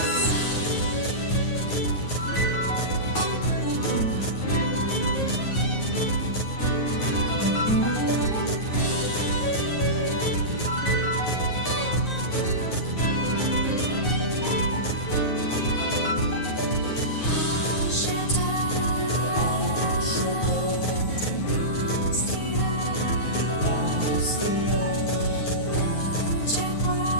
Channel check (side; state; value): right; late; 9.5 ms